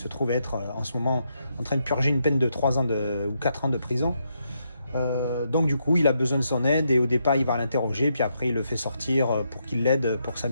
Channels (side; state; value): both; inverted; correlation -0.79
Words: trouve être en ce moment en train de purger une peine de 3 ans ou 4 ans de prison. Donc du coup il a besoin de son aide et au départ il va l'interroger puis après il le fait sortir pour qu'il l'aide pour sa